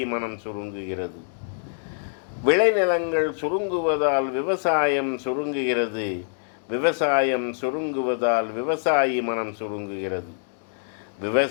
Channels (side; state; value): right; silent; digital silence